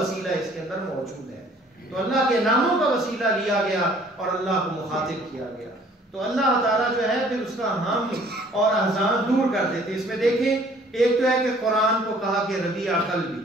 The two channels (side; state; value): both; normal; correlation 0.57